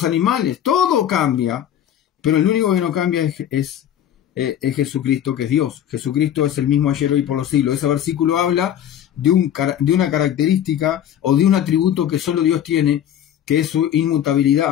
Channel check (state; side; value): quieter; right; 10.4 dB